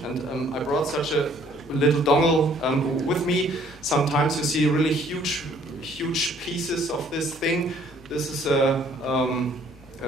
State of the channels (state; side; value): normal; both; correlation 0.60